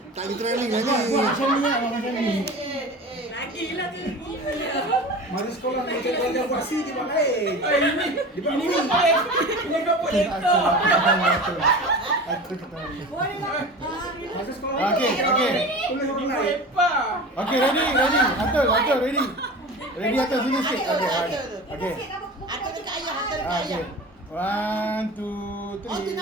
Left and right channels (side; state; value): both; normal; correlation 0.34